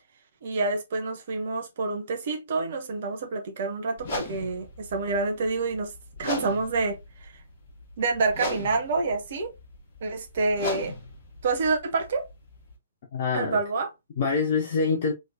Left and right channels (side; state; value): both; inverted; correlation -0.58